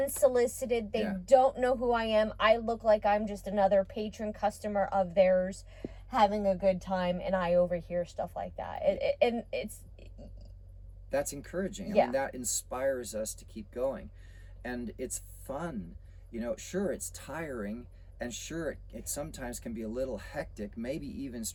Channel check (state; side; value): identical; both; correlation 1.00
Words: They don't know who I am. I look like I'm just another patron customer of theirs having a good time, and I overhear stuff like that. That's encouraging. I mean, that inspires us to keep going, and it's fun. Sure, it's tiring, and sure, it sometimes can be a little hectic, maybe even